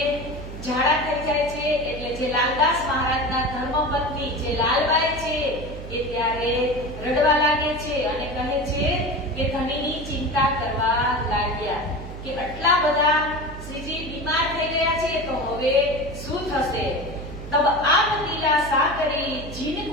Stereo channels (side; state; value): right; noise; hum, 11 dB below the sound